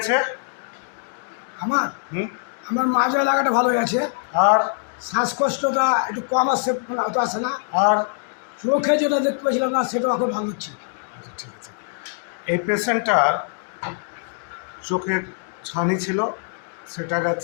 আমার হুম। আমার মাঝে এলাকাটা ভালো হয়ে আছে, আর শ্বাসকষ্টটা একটু কম আসছে, অত আসে না। আর চোখে যেটা দেখতে পাচ্ছিলাম না সেটাও এখন ভালো হচ্ছে। আচ্ছা, ঠিক আছে। এই পেশেন্টটার চোখের ছানি ছিল, সেটা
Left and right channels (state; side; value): silent; right; digital silence